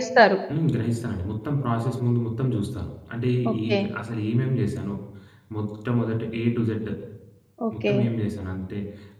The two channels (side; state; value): both; identical; correlation 1.00